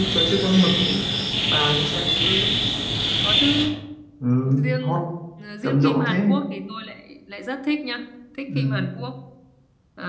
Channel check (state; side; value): identical; both; correlation 1.00